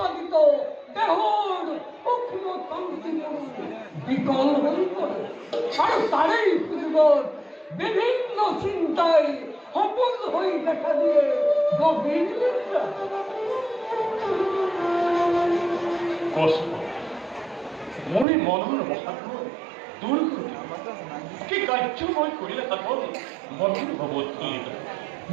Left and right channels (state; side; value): drops out; left; at 18.2 s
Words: দেহৰ সূক্ষ্ম তন্ত্ৰীবোৰ বিকল হৈ পৰে আৰু তাৰেই সুযোগত বিভিন্ন চিন্তাই সপোন হৈ দেখা দিয়ে গভীৰ নিদ্ৰা। কষ্ট মই মনৰ অসাধ্য দূৰ কৰি কি কাৰ্য মই কৰিলে সাধন মনৰ ভৱধূলিত।